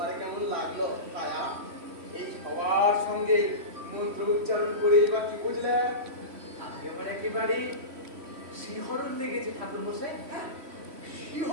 কেমন লাগলো ভাইয়া? এই সবার সঙ্গে মন্ত্র উচ্চারণ করে এবার কি বুঝলে? একেবারে শিহরণ লেগেছে ঠাকুর মশাই। হ্যাঁ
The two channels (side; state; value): left; late; 3.1 ms